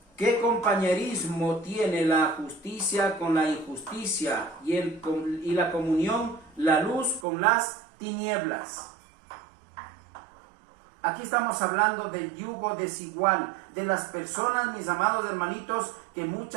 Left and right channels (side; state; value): left; drops out; at 7.2 s